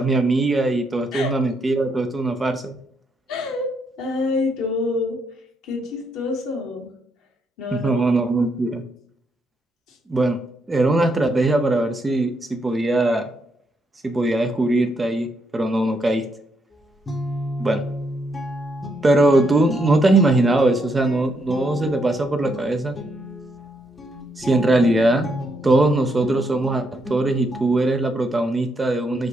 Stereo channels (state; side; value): normal; both; correlation 0.77